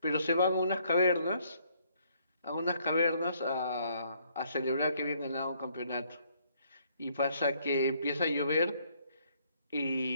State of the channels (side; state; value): both; inverted; correlation -0.67